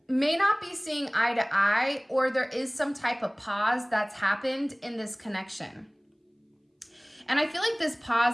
may not be seeing eye to eye, or there is some type of pause that's happened in this connection. And I feel like this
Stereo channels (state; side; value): identical; both; correlation 1.00